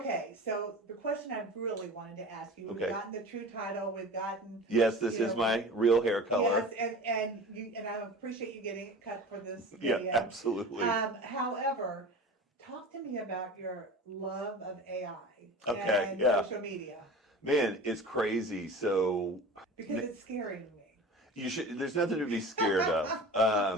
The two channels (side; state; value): both; normal; correlation 0.35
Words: so the question I really wanted to ask you, we've Okay. gotten the true title, we've gotten. Yes, this you is know, my real hair color. Yes, and I appreciate you getting it cut for this Yeah, video. absolutely. However, talk to me about your love of AI Okay, and yeah. social media, Man, it's crazy. So because it's scaring me. there's nothing to be scared